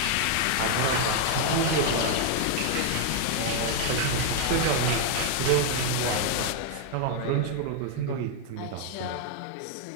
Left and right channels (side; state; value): both; different; correlation 0.00